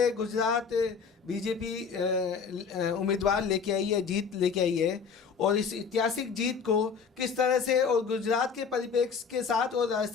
गुजरात बीजेपी उम्मीदवार लेके आई है, जीत लेके आई है। और इस ऐतिहासिक जीत को किस तरह से और गुजरात के परिप्रेक्ष्य के साथ और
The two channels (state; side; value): quieter; right; 5.9 dB